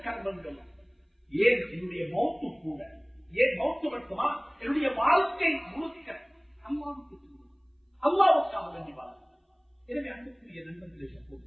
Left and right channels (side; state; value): both; identical; correlation 1.00